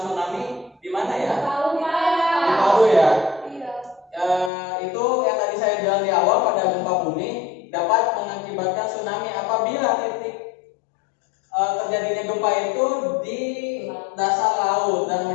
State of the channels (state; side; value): drops out; right; at 4.5 s